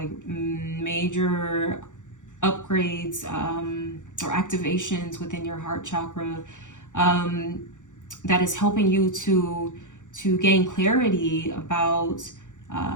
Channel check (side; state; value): right; late; 0.86 ms